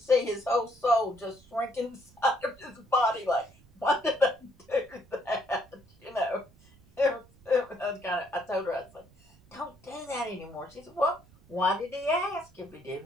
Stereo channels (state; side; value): noise; right; rumble, 28 dB below the sound